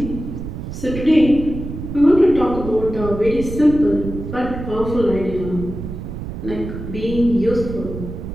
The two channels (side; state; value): right; noise; rumble, 8 dB below the sound